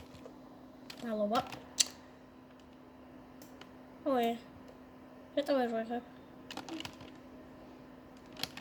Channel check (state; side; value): identical; both; correlation 1.00